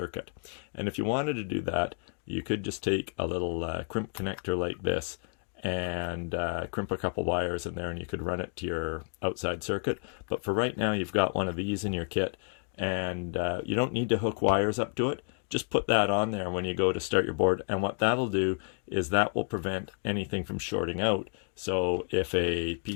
And if you wanted to do that, you could just take a little crimp connector like this and crimp a couple wires in there, and you could run it to your outside circuit. But for right now, you've got one of these in your kit, and you don't need to hook wires up to it. Just put that on there when you go to start your board, and what that'll do is that will prevent anything from shorting out. So if a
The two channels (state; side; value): silent; right; 55 dB below the other